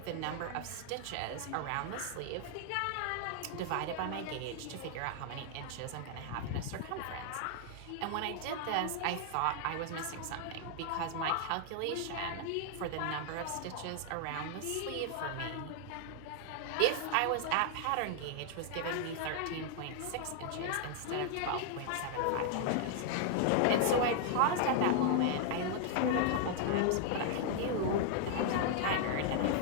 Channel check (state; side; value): different; both; correlation 0.00